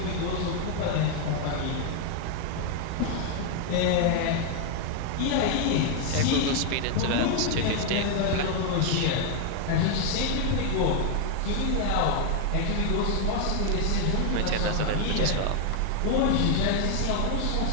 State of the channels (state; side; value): different; both; correlation 0.00